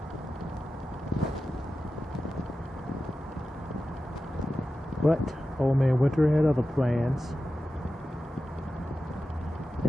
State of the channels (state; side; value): normal; both; correlation 0.92